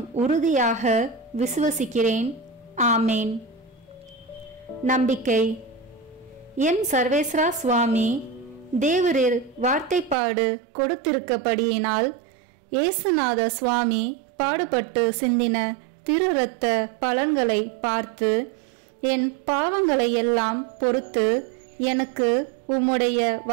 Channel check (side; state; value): left; drops out; at 10.2 s